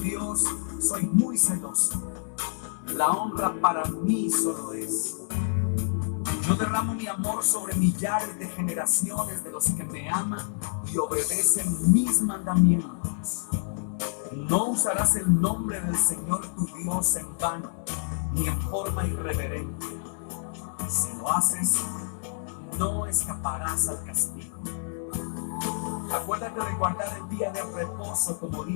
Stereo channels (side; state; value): right; silent; 59 dB below the other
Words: soy muy celoso. La honra para mí solo es. Yo derramo mi amor sobre millares de generaciones de los que me aman y obedecen mis mandamientos. No usarás el nombre del Señor tu Dios en vano, ni en forma irreverente. Si lo haces, no escaparás al castigo. Acuérdate de guardar el día de reposo como